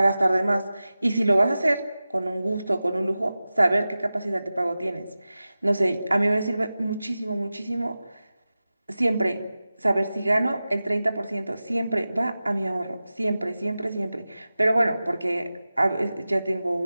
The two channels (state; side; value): inverted; both; correlation -0.95